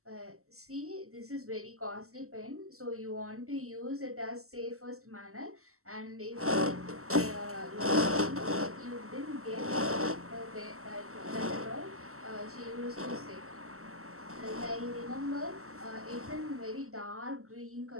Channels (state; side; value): late; left; 0.63 ms